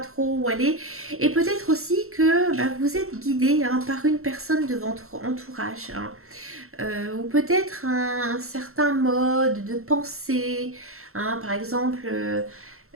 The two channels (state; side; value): late; left; 0.63 ms